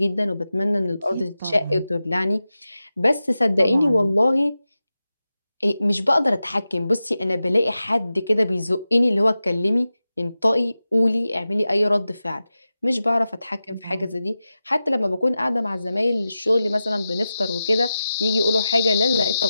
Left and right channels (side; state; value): both; inverted; correlation -0.93